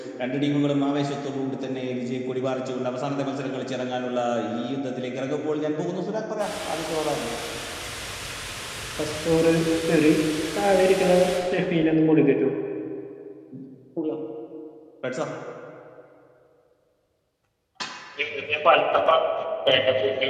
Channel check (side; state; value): both; identical; correlation 1.00